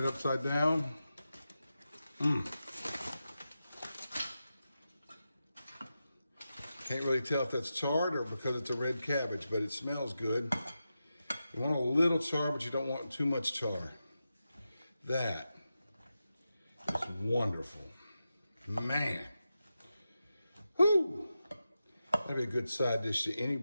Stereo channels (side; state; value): both; inverted; correlation -0.90